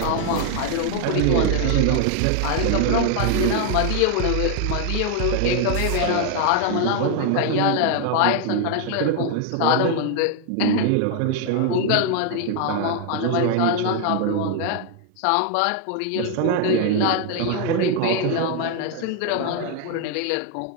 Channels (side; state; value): both; different; correlation 0.00